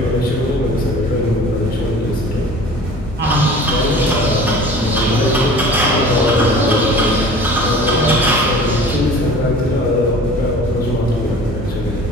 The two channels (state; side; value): normal; both; correlation 0.43